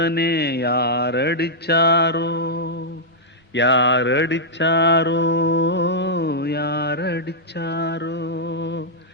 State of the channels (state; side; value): normal; both; correlation -0.08